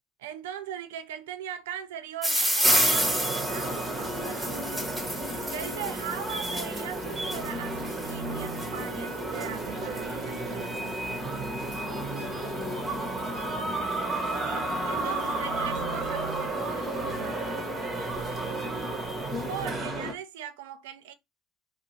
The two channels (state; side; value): normal; both; correlation 0.62